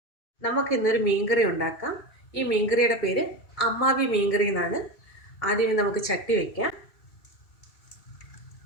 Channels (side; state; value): right; late; 2.7 ms